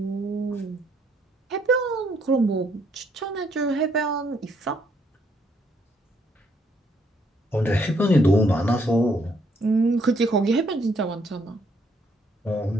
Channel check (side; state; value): both; normal; correlation 0.70